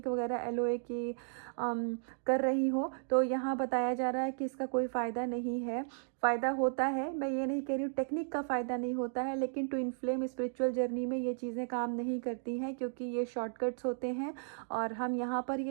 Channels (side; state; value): left; silent; digital silence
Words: वगैरह एलओए की कर रही हो। तो यहाँ बताया जा रहा है कि इसका कोई फ़ायदा नहीं है। फ़ायदा होता है, मैं ये नहीं कह रही हूँ टेक्निक का फ़ायदा नहीं होता है, लेकिन ट्विन फ्लेम स्पिरिचुअल जर्नी में ये चीज़ें काम नहीं करती हैं, क्योंकि ये शॉर्टकट्स होते हैं। और हम यहाँ पर